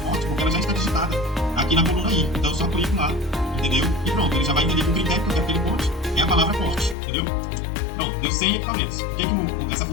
porque ela já está digitada aqui na coluna I. Então, eu só clico lá, entendeu? E pronto, ele já vai entender que o critério que eu quero que ele conte é a palavra corte, entendeu? Pronto, deu 100 equipamentos. O que essa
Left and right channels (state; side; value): drops out; right; at 7.0 s